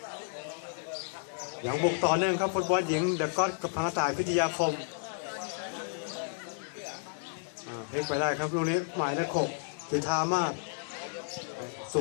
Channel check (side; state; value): right; silent; digital silence